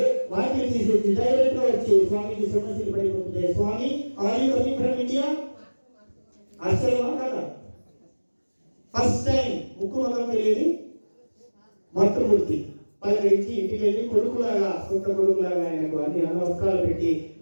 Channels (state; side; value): inverted; both; correlation -1.00